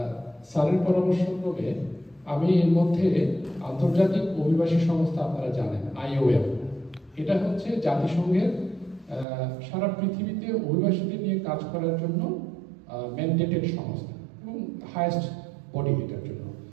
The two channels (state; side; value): drops out; left; at 9.2 s